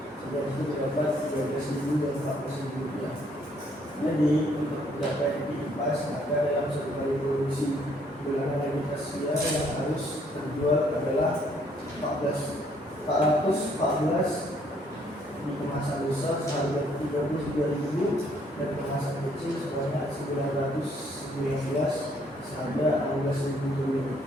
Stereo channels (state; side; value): normal; both; correlation 0.66